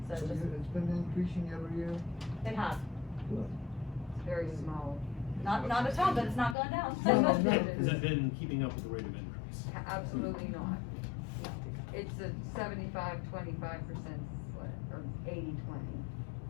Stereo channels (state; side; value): drops out; right; at 6.6 s